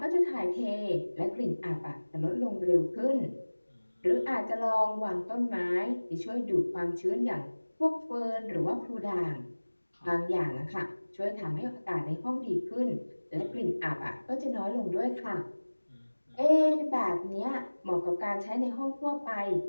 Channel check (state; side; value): inverted; both; correlation -1.00